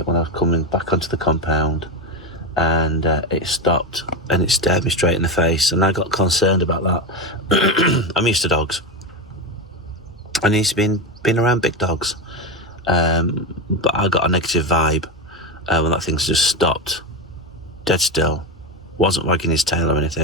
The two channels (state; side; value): normal; both; correlation 0.16